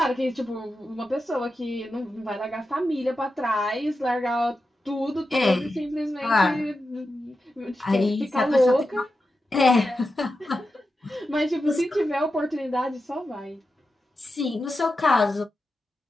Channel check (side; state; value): both; normal; correlation 0.90